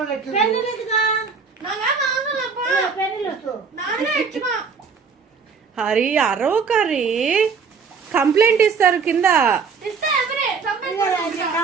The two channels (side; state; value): left; quieter; 5.5 dB